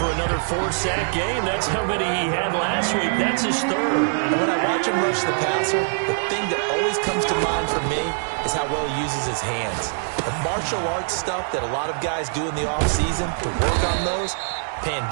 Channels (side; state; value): left; silent; digital silence